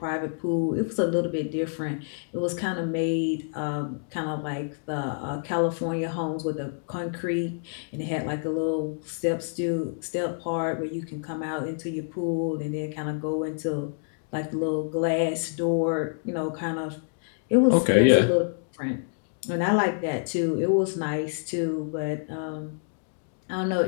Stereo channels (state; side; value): silent; right; digital silence